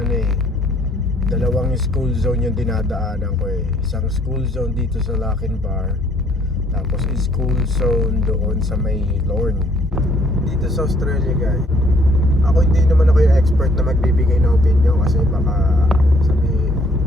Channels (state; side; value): normal; both; correlation 0.64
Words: dalawang school zone yung dinadaanan ko eh. Isang school zone dito sa Lackenbar, tapos school zone doon sa may Lorne. Dito sa Australia, guys, ako hindi naman ako yung expert na magbibigay ng opinion kasi baka